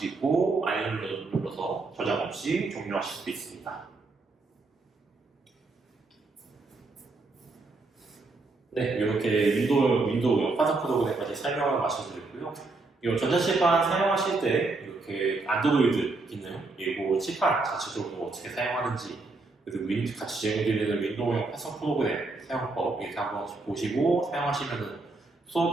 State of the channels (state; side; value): quieter; left; 3.5 dB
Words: 있고 아니면 눌러서 저장 없이 종료하실 수도 있습니다. 네, 이렇게 윈도우 판사 프로그램까지 설명을 마쳐드렸고요. 이 전자칠판 사용하실 때 이렇게 안드로이드 기능 그리고 칠판 자체적으로 어떻게 사용하는지 그리고 같이 제공드리는 윈도우용 판사 프로그램 사용법 이렇게 한번 보시고 사용하시면